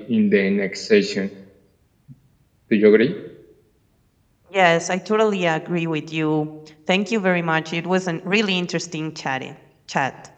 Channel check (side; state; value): both; identical; correlation 1.00